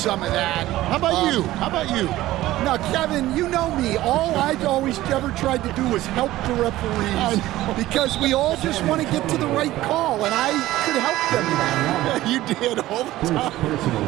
of that. How about you? How about you? Now, Kevin, you know me. All I've always ever tried to do was help the referees because we all just want to get to the right call, and I could help them in that. You did all the time.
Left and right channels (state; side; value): quieter; left; 15.9 dB